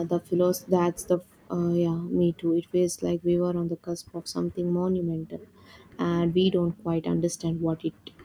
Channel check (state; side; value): identical; both; correlation 1.00